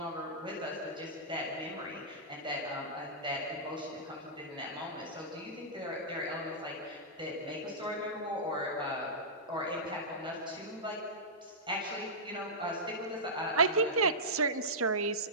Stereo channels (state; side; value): normal; both; correlation -0.15